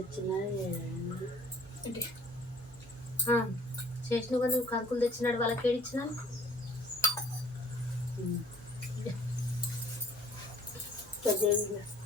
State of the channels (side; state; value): both; normal; correlation 0.54